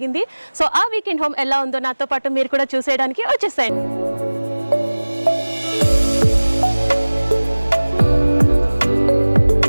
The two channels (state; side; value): inverted; both; correlation -1.00